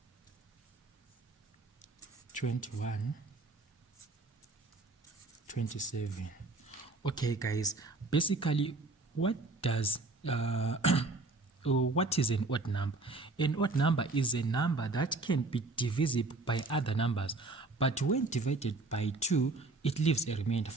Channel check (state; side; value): quieter; left; 3.4 dB